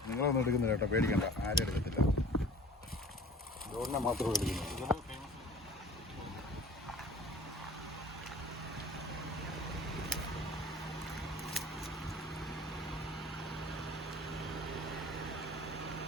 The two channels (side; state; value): both; normal; correlation 0.45